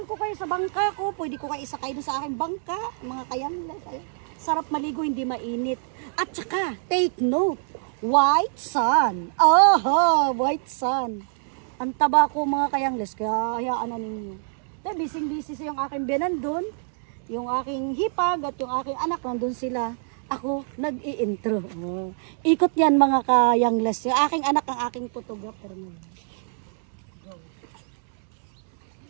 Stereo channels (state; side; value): silent; left; digital silence